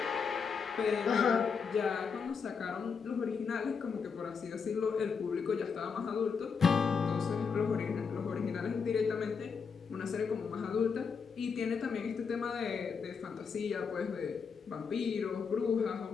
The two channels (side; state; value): right; quieter; 5.8 dB